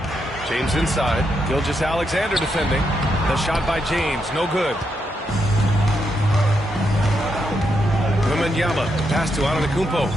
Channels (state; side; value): normal; both; correlation 0.81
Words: James inside. Gilgeous-Alexander defending. The shot by James, no good. Wembanyama, pass to Antetokounmpo.